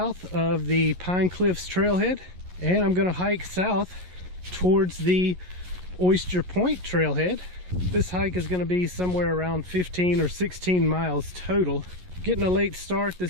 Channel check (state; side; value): late; left; 11 ms